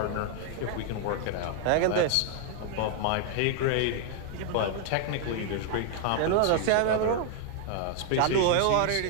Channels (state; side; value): different; both; correlation 0.00